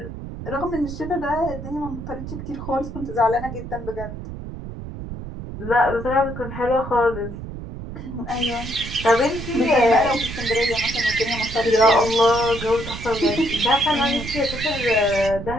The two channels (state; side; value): noise; right; rumble, 9 dB below the sound